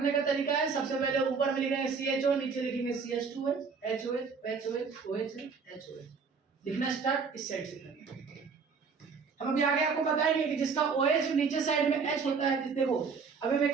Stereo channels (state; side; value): quieter; left; 5.3 dB